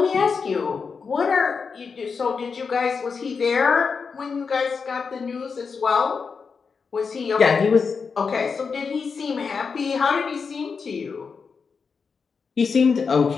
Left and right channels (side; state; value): right; quieter; 5.4 dB